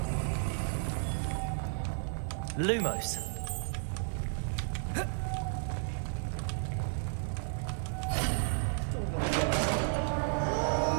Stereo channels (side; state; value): left; silent; 56 dB below the other